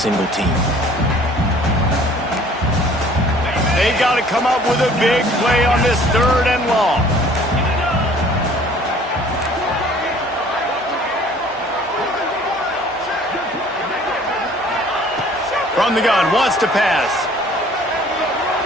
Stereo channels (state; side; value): normal; both; correlation 0.53